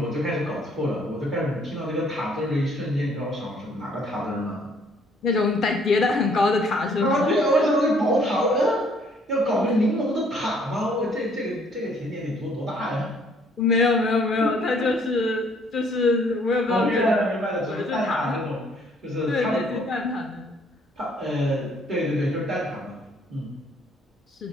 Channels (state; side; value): normal; both; correlation 0.62